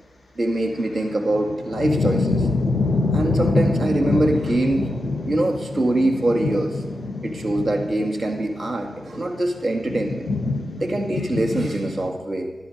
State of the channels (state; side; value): normal; both; correlation 0.88